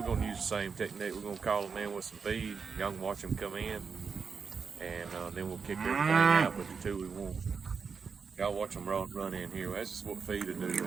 gonna use the same technique. We're gonna call them in with some feed. Y'all can watch them come in, and then we'll kick everything out with the 2 we want. Y'all watch them run in here. That's just what feed will do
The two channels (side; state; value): left; quieter; 5.6 dB